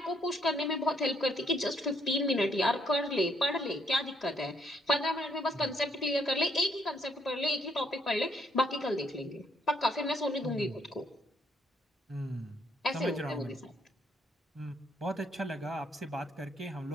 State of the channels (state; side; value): normal; both; correlation 0.71